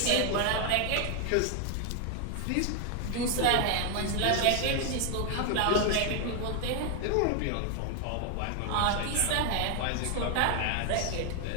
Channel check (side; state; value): both; different; correlation 0.00